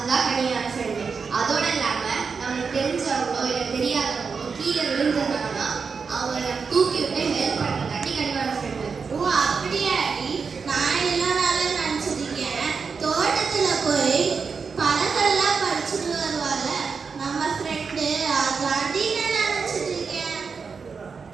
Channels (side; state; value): left; quieter; 5.4 dB